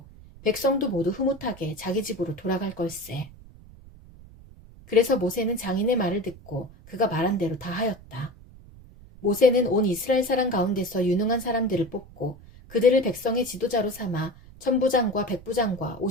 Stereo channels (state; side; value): noise; right; rumble, 21 dB below the sound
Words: 백성도 모두 흐뭇하게 자기 집으로 돌아갈 걸세. 그래서 모세는 장인의 말을 듣고 그가 말한 대로 다 하였다. 모세는 온 이스라엘 사람 가운데서 유능한 사람들을 뽑고 그들을 백성의 지도자로 삼아 천부장과 백부장과